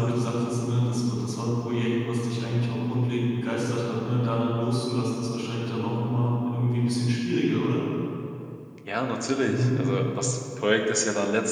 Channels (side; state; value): both; identical; correlation 1.00